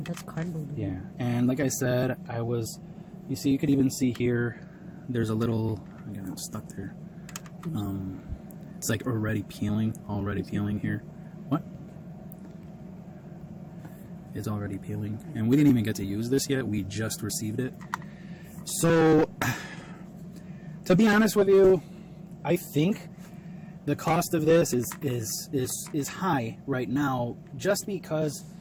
that's cardboard. Yeah, and like I said, I was, You see, you could even see here, there's a little, I got it stuck there. It's like already peeling here. What? It's already peeling. And we didn't even get to use this yet. We just received it. So, to be honest with you, I think the cost of this is high right now, just because,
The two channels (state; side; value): identical; both; correlation 1.00